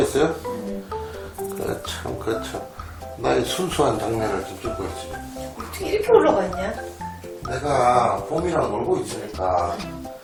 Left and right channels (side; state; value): both; identical; correlation 1.00